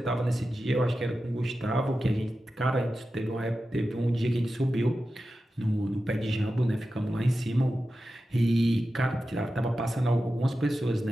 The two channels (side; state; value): both; normal; correlation 0.92